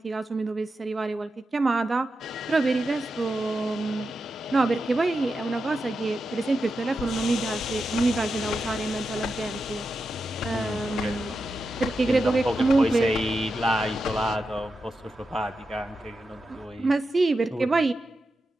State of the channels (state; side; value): normal; both; correlation 0.89